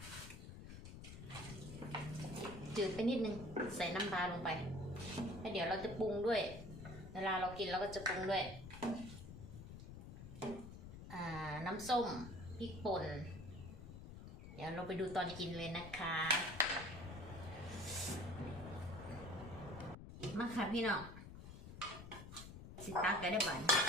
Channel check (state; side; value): noise; left; rumble, 12 dB below the sound